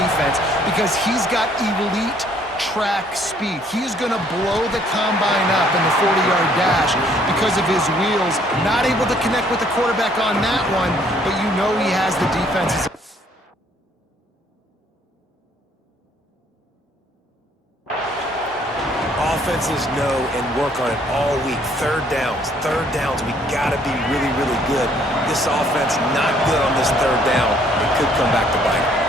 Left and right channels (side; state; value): both; normal; correlation 0.63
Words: because he's got elite track speed. He is going to blow the combine up in the 40-yard dash because of his wheels. Not able to connect with the quarterback on that one, but you know he has the defenses. Offenses know and work on it all week. Third downs, we got to be really, really good. This offense not good on this third down. It could come back to bite them.